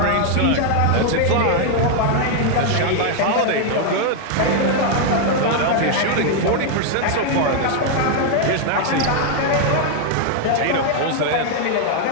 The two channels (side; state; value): both; different; correlation 0.00